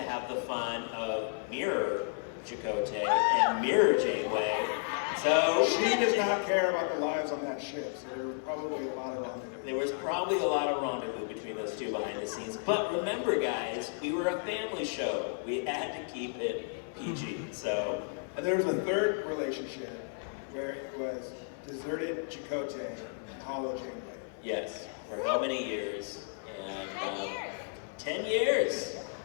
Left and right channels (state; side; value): silent; right; 56 dB below the other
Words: have the fun of mirror Chakotay and mirror Janeway. So she does not care about the lives on that ship, so there was probably a lot of rendezvous. There was probably a lot of rendezvous between those two behind the scenes. But remember, guys, we were a family show. We had to keep it PG. So, and there was a third relationship where it was deserted Chakotay and Hollow Janeway. Yes, for how many years? And 10 years.